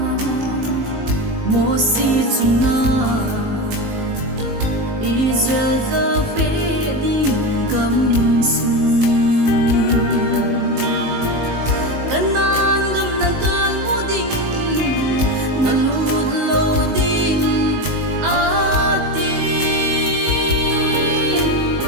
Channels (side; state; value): left; late; 19 ms